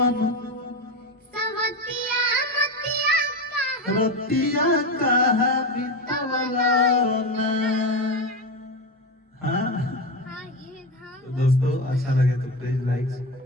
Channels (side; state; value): both; normal; correlation 0.18